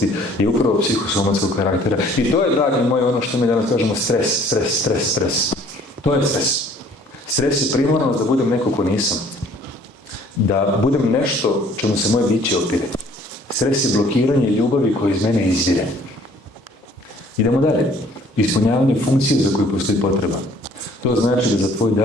je upravo psihosomatskog karaktera. I to je, dragi moji, ono što mi danas kažemo stres. To je stres. Stres je primarnost da budem neko ko nisam. Da budem nešto čemu se moje biće opire. Stres je blokiranje ljubavi koja iz mene izvire. Idemo dalje. Ispunjavanje funkcije za koju postoji potreba. To znači da za tvoj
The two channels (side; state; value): both; normal; correlation 0.56